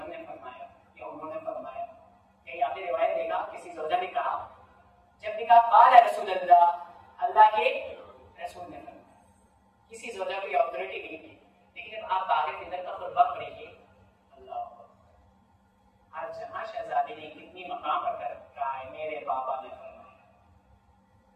ने फरमाया या उन्होंने फरमाया। कहीं आपने रिवायत देखा किसी ज़ौजा ने कहा, जब ने कहा क़ाल रसूलुल्लाह, अल्लाह के रसूल ने फरमाया। किसी ज़ौजा को ऑथोरिटी नहीं थी। लेकिन जब आप बाग़े फ़िदर का खुतबा पढ़ेंगे, अल्लाह हर जहां शहजादी ने कितनी मकाम पर कर रखा है, मेरे बाबा ने फरमाया।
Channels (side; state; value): both; identical; correlation 1.00